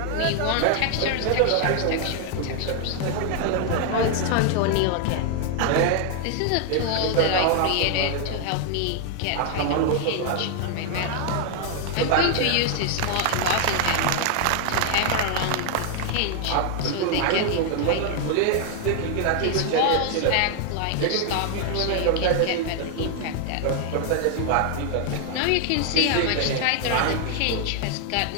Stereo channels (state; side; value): different; both; correlation 0.00